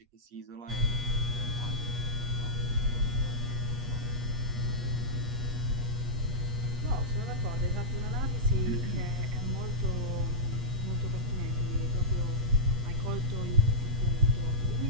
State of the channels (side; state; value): left; late; 8.3 ms